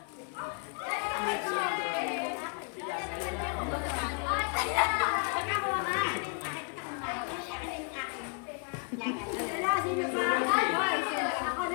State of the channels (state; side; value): quieter; right; 36.6 dB